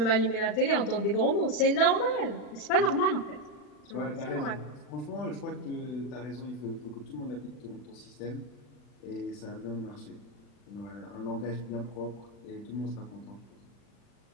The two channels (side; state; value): right; late; 40 ms